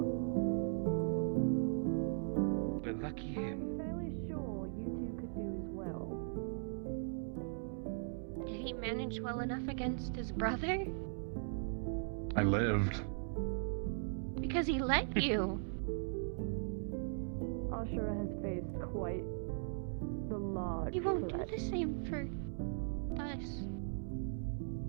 But lucky him. I'm fairly sure you two could do as well. Did he manage well enough against his brother? I lived. Because he let you. Ashura has faced quite the large He won't threat. do the same for us.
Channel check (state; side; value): silent; left; digital silence